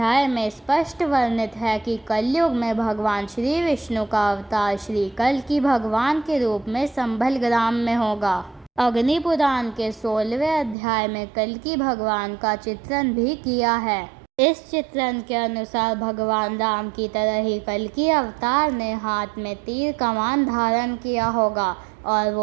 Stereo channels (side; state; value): left; drops out; at 10.8 s